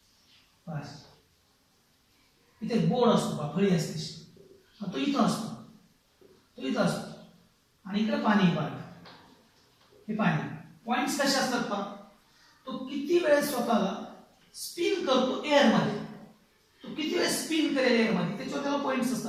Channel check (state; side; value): identical; both; correlation 1.00